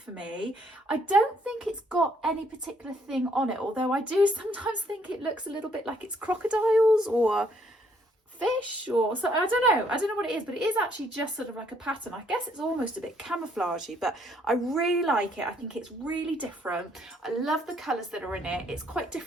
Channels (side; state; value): both; normal; correlation 0.67